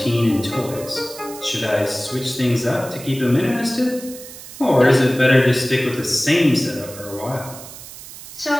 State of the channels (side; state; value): right; noise; hiss, 15 dB below the sound